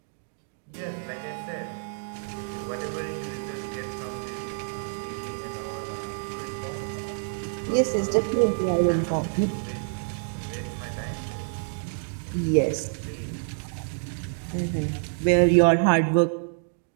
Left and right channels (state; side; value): silent; left; digital silence